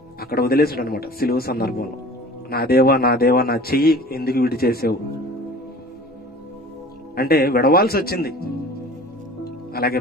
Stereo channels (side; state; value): both; normal; correlation 0.42